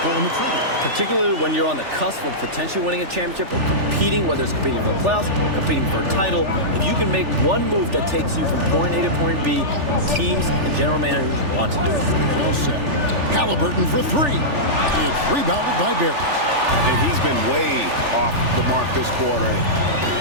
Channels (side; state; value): left; late; 3.4 ms